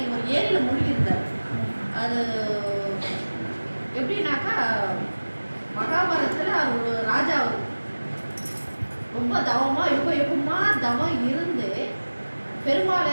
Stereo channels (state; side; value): inverted; both; correlation -1.00